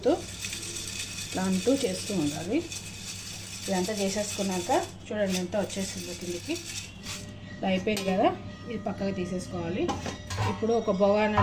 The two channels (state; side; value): identical; both; correlation 1.00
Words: ఇట్లా అంటూ చేస్తూ ఉండాలి. ఇదంతా చేసేసుకున్నాక చూడండి ఎంత వచ్చేసిందో కిందికి. ఇలా అయిపోయింది కదా, ఇది పక్కగా తీసేసుకోవాలి. ఇప్పుడు ఒక